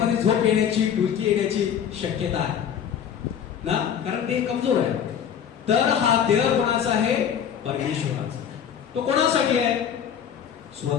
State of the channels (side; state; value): right; quieter; 8.5 dB